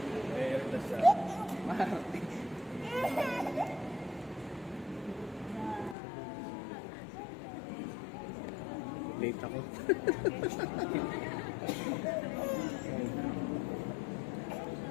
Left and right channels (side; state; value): right; drops out; at 6.0 s